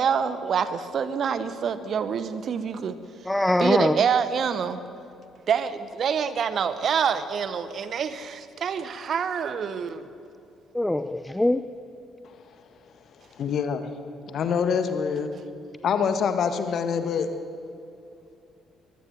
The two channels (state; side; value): normal; both; correlation 0.74